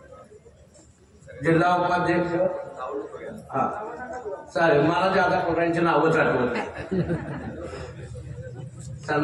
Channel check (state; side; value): identical; both; correlation 1.00